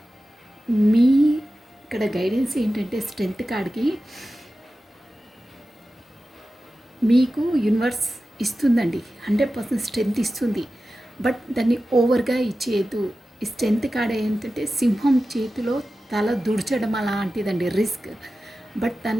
మీ ఇక్కడ గైడెన్స్ ఏంటంటే స్ట్రెంగ్త్ కాడికి మీకు యూనివర్స్ ఇస్తుందండి, 100% స్ట్రెంగ్త్ ఇస్తుంది. బట్ దాన్ని ఓవర్గా ఇచ్చేయద్దు. ఈ స్ట్రెంగ్త్ కాడ ఏంటంటే సింహం చేతిలో తల దుడ్చడం అలాంటిదండి, రిస్క్. బట్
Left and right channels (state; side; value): normal; both; correlation 0.94